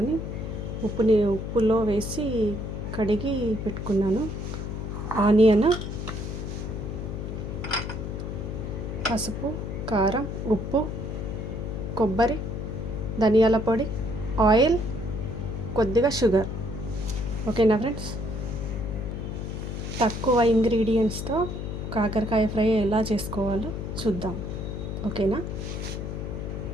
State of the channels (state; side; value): noise; left; hum, 5 dB below the sound